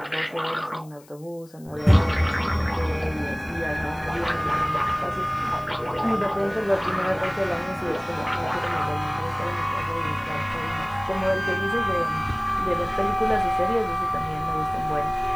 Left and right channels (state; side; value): noise; left; hiss, 26 dB below the sound